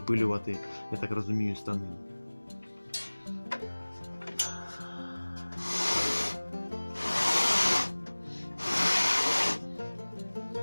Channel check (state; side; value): inverted; both; correlation -1.00